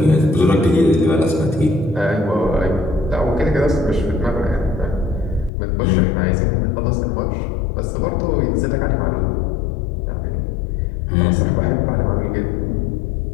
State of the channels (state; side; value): drops out; right; at 5.5 s